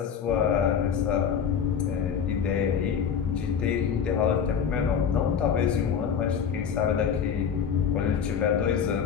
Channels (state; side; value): quieter; right; 7.5 dB